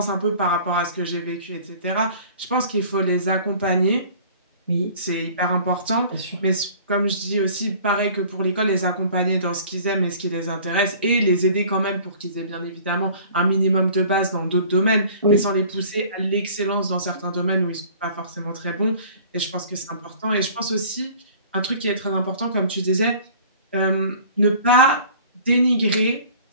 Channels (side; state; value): both; inverted; correlation -0.48